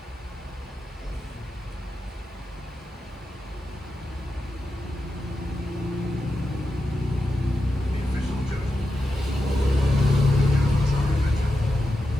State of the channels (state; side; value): normal; both; correlation 0.89